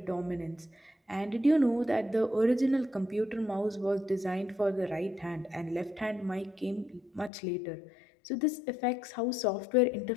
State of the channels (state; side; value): drops out; right; at 7.3 s